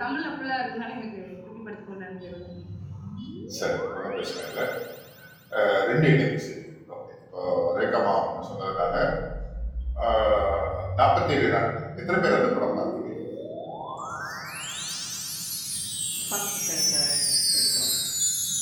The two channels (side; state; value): both; identical; correlation 1.00